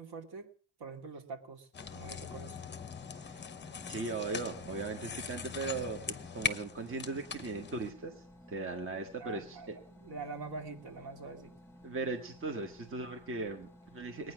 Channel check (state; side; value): normal; both; correlation 0.07